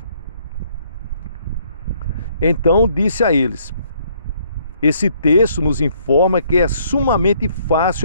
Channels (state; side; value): inverted; both; correlation -0.66